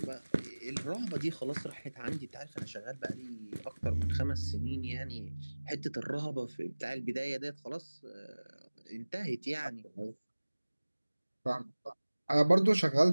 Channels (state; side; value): inverted; both; correlation -1.00